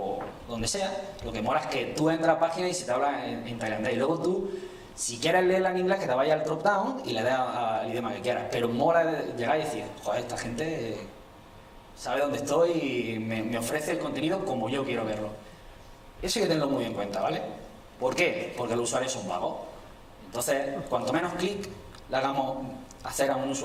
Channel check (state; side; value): identical; both; correlation 1.00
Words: donde sea. Lo que mola es que tú entras a la página y se te habla en tailandés. Y luego tú, si quieres leerla en inglés, que te vayas al drop down y le des al idioma que quieras. Pero mola llegar y decir, joder, esta gente sabe dónde estoy y me ofrece el contenido como yo quiero verlo. Eso hay que tenerlo muy en cuenta, ¿vale? ¿Por qué? Porque los usuarios son vagos. Entonces, cuanto menos clic le hagamos hacer a un